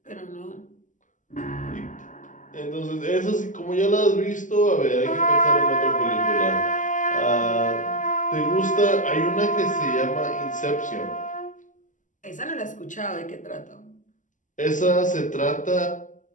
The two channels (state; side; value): late; right; 0.37 ms